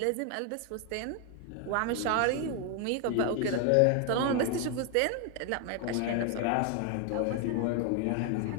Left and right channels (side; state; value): both; different; correlation 0.01